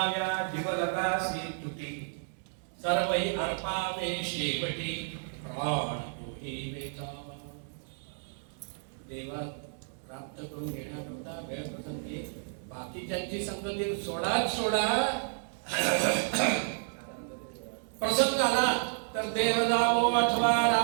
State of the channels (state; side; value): silent; left; digital silence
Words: जीवलगासी तुटी, सर्वही अर्पावे शेवटी, प्राण तोही वेचावा. देवा प्राप्त करून घेण्याकरता वेळ प्रसंगी बाकीच्यांची संगती सोडा. प्रसंग आला तर देह जावो अथवा